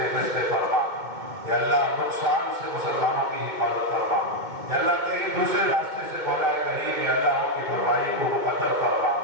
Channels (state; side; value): late; left; 2.2 ms